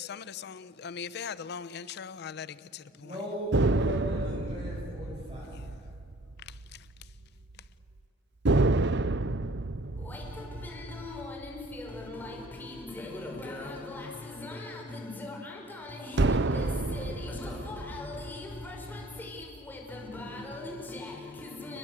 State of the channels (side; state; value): both; normal; correlation 0.53